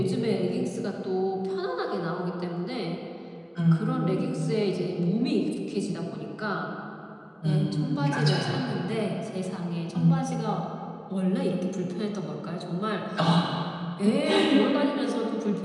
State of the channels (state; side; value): identical; both; correlation 1.00